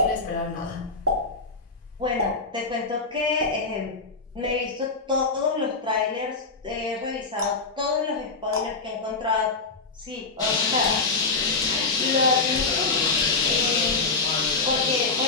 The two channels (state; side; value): quieter; right; 3.9 dB